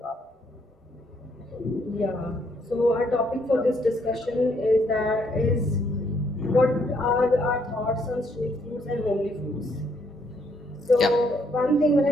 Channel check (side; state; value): both; normal; correlation 0.71